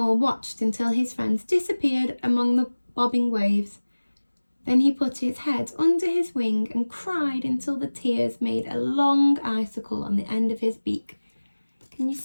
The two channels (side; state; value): both; inverted; correlation -1.00